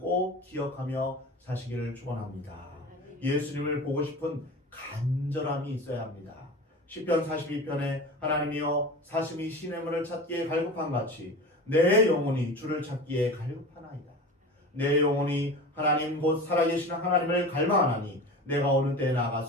기억하며 사시기를 축원합니다. 예수님을 보고 싶은 간절함이 있어야 합니다. 시편 42편에 하나님이여 사슴이 시냇물을 찾기에 갈급한 같이 내 영혼이 주를 찾기에 갈급하나이다. 내 영혼이 하나님 곧 살아계신 하나님을 갈망하나니 내가 어느 때에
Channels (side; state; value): both; normal; correlation 0.33